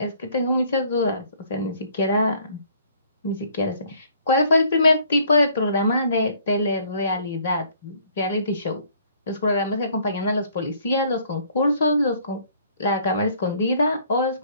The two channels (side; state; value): both; inverted; correlation -0.59